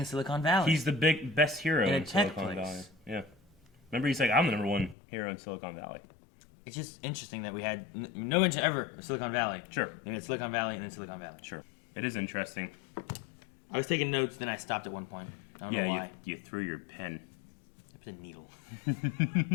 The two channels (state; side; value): drops out; right; at 5.0 s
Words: Silicon Valley. He's the best hero In a in tech Silicon place. Valley. Yeah. Remember, he's like, I'm the number one hero in Silicon Valley. It's just interesting that we had no mention ever of Silicon Valley. Sure. And it's Silicon Valley and then Silicon Valley. Sure. It is interesting. I was taking notes, then I stopped at one point. I don't know why. You threw your pen. It was a needle.